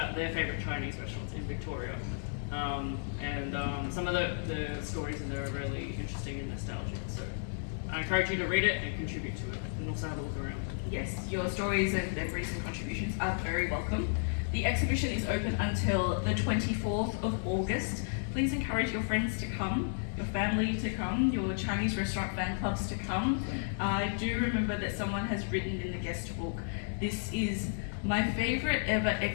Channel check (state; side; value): silent; right; digital silence